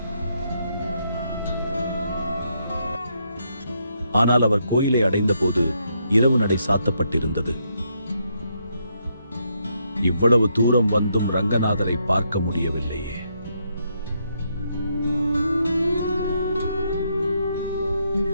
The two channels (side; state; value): both; inverted; correlation -0.77